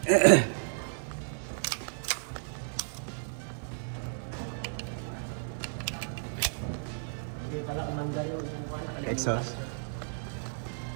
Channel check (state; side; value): silent; left; digital silence